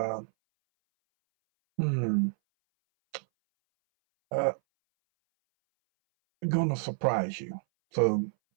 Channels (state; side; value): silent; left; 59 dB below the other